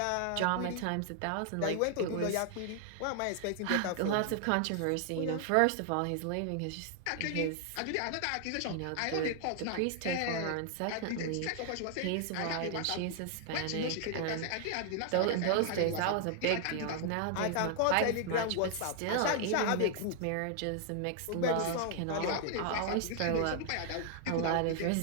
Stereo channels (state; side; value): different; both; correlation 0.00